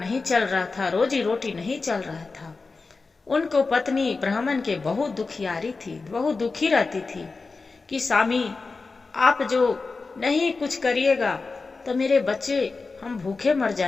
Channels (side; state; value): right; quieter; 4.1 dB